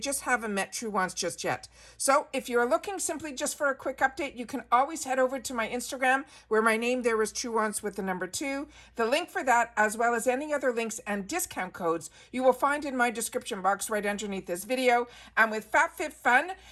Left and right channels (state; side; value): identical; both; correlation 1.00